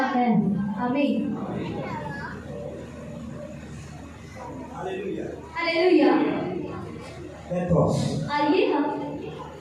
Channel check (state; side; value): identical; both; correlation 1.00